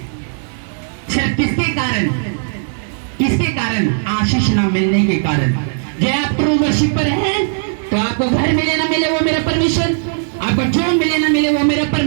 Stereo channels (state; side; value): silent; left; digital silence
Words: सिर्फ किसके कारण? किसके कारण? आशीष ना मिलने के कारण। जो आप ट्रू वर्शिपर हैं तो आपको घर मिले ना मिले वो मेरा परमेश्वर, आपको जो मिले ना मिले वो मेरा